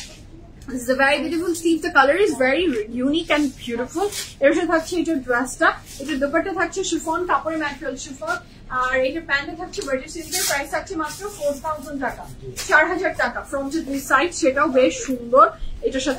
this is a very beautiful sleeve. The color is very unique and beautiful. এর সাথে থাকছে এটা ড্রেসটা, এটা দুপাট্টা থাকছে শিফন, কাপড়ের ম্যাটেরিয়াল শিফন, আর এটা প্যান্টে থাকছে বাটার সিল্কের। প্রাইস থাকছে মাত্র 4,000 টাকা, 4,000 টাকা। ফ্রন্টের 2 সাইড, সেটাও বেশ সুন্দর। এটার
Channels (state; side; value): identical; both; correlation 1.00